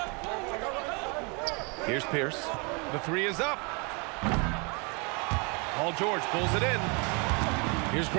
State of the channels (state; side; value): quieter; left; 32.1 dB